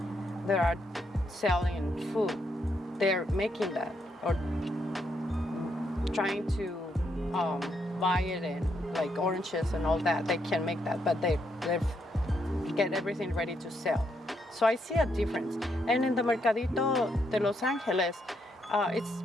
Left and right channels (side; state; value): both; normal; correlation 0.77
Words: that are selling food. They're making that or trying to buy it in like oranges and all that. They can make that, but they get everything ready to sell. So I see a difference. And in the Mercadito de Los Angeles, it's